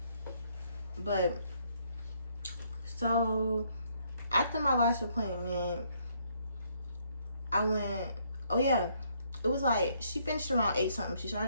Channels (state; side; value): inverted; both; correlation -0.70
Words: But so after my lash appointment, I went. Oh yeah, it was like she finished around 8 something. She